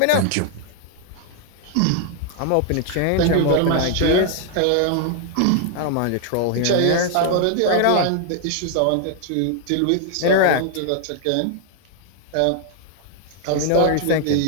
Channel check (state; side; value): different; both; correlation 0.00